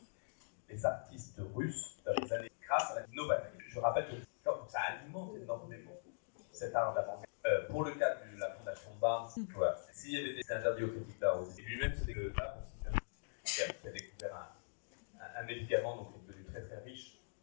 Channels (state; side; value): silent; right; digital silence